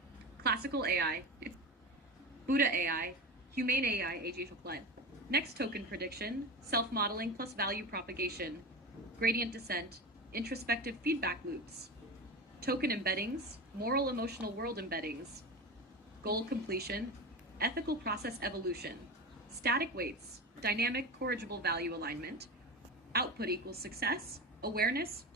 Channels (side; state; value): both; normal; correlation 0.26